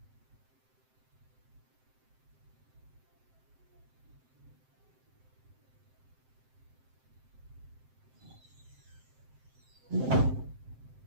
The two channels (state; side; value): late; left; 7.7 ms